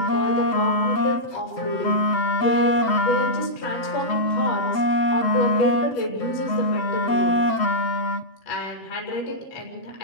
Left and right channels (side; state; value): right; late; 7.8 ms